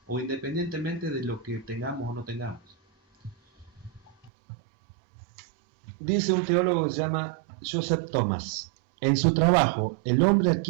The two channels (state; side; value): drops out; left; at 4.3 s